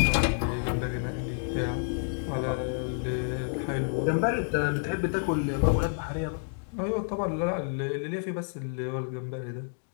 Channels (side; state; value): right; silent; digital silence